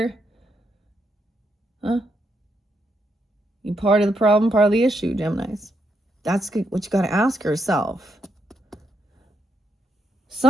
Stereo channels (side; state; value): both; normal; correlation 0.79